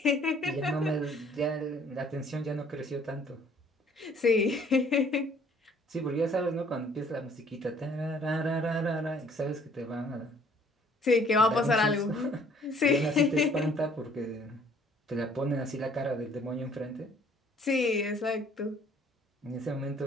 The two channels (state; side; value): normal; both; correlation 0.59